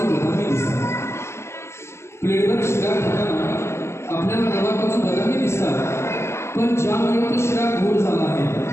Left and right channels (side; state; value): right; late; 0.13 ms